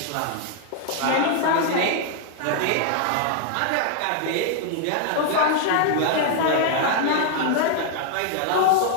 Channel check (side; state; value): both; different; correlation 0.00